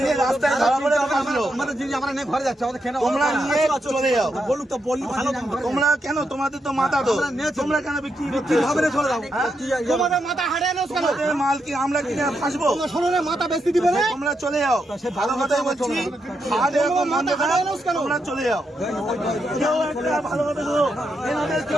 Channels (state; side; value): normal; both; correlation 0.82